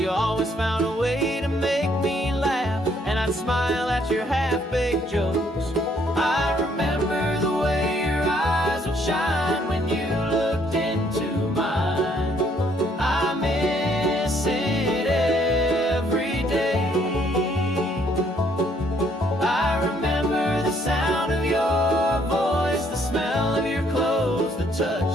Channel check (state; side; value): normal; both; correlation 0.67